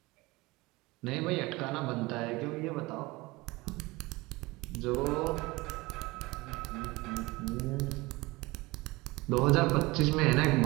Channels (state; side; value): quieter; left; 22.1 dB